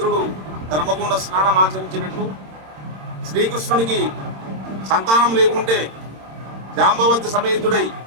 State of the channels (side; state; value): left; late; 26 ms